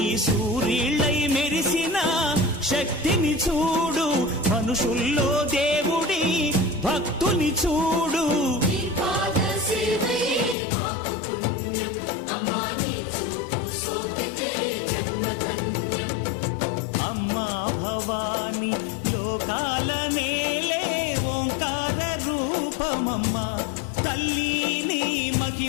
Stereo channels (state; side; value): drops out; right; at 10.6 s